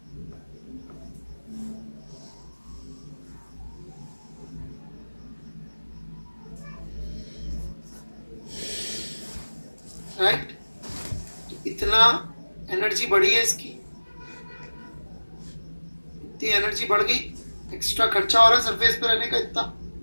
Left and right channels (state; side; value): inverted; both; correlation -1.00